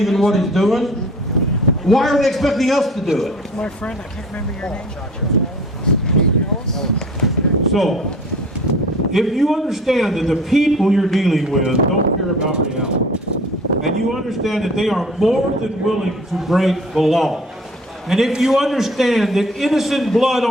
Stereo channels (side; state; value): both; normal; correlation 0.45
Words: in what he's doing, why are they expecting us to do it? My friend, I can't remember your name. So, if you understand that the people you're dealing with don't care about reality, and you understand that they are more than willing to break the law, and if you understand that innocent blood